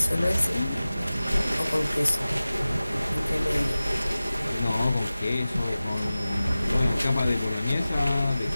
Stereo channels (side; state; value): both; inverted; correlation -0.96